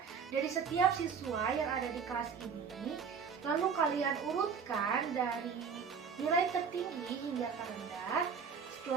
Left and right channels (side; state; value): left; quieter; 6.3 dB